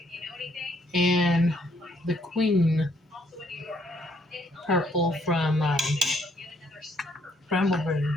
and the Queen Purple from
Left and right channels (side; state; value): both; normal; correlation 0.69